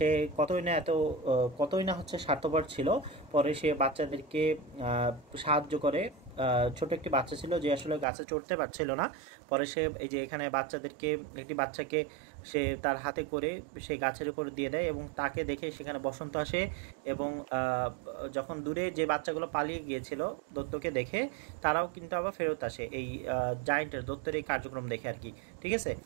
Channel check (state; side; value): drops out; left; at 8.1 s